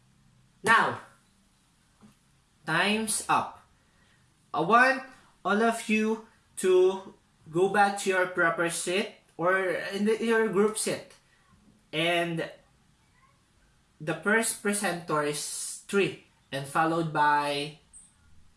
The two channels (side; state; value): both; identical; correlation 1.00